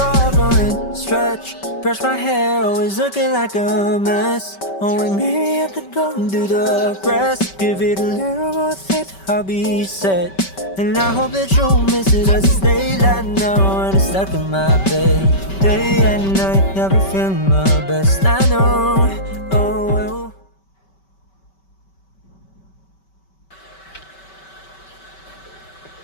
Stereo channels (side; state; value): right; late; 5.2 ms